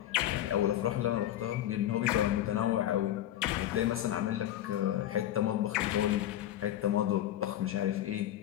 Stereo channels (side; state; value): right; quieter; 12.4 dB